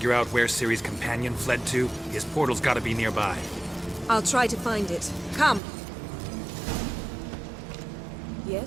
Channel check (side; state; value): left; drops out; at 5.6 s